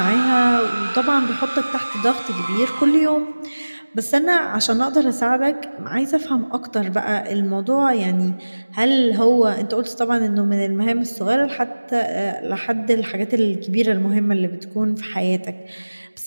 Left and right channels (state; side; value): inverted; both; correlation -1.00